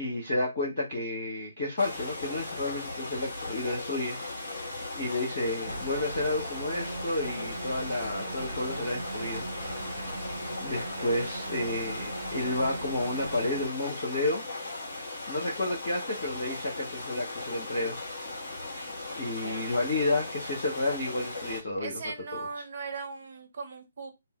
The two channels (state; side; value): inverted; both; correlation -0.67